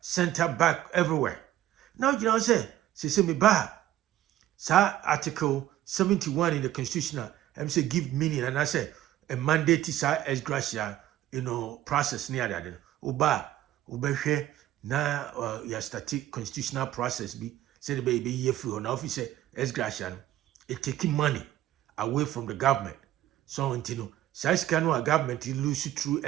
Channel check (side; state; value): left; quieter; 13.3 dB